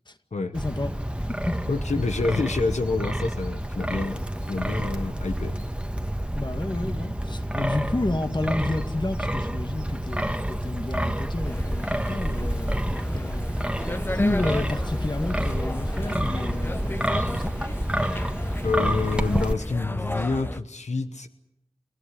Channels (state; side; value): normal; both; correlation 0.92